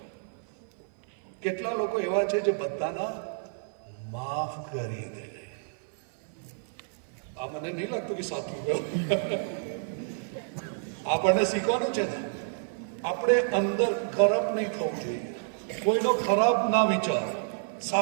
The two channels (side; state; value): left; silent; 56 dB below the other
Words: કેટલા લોકો એવા છે જે બધાના માફ કરી દે? આ મને નહીં લાગતું કે સાચું ગયું. આપણને શીખવાનું છે ને, આપણે અંદર ખરાબ નહીં થવું જોઈએ. કોઈનો ખરાબ ના વિચારો,